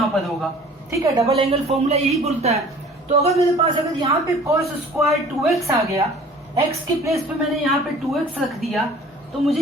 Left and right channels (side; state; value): both; normal; correlation 0.48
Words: पर होगा। ठीक है, डबल एंगल फॉर्मूला यही बोलता है। तो अगर मेरे पास अगर यहाँ पे cos स्क्वायर 2x आ गया, x के प्लेस पे मैंने यहाँ पे 2x रख दिया, तो मुझे